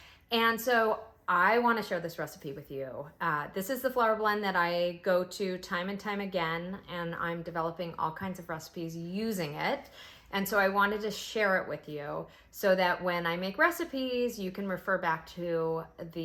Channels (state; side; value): identical; both; correlation 1.00